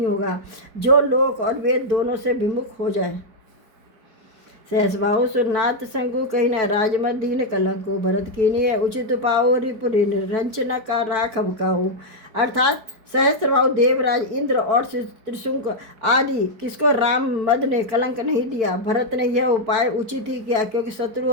होगा जो लोक और वेद दोनों से विमुख हो जाए। सहसबाहु सुरनाथ शंकु, कही न राजमत दीन कलंको, भरत कीनिय उचित पाओ, रिपुरी रंचना का राखब काऊ। अर्थात सहस्त्रबाहु देवराज इंद्र और त्रिशंक आदि किसको राम मद ने कलंक नहीं दिया। भरत ने यह उपाय उचित ही किया, क्योंकि शत्रु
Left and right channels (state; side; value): late; left; 4.5 ms